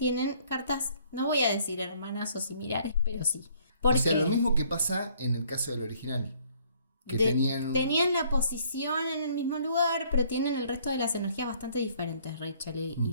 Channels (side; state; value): both; inverted; correlation -0.63